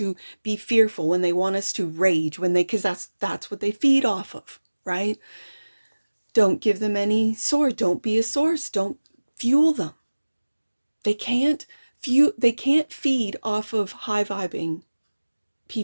be fearful, when they want us to rage, because that's what they feed off of, right? Don't give them any source. Don't be a source. Don't fuel them. They can't feed off of high vibing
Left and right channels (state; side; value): inverted; both; correlation -1.00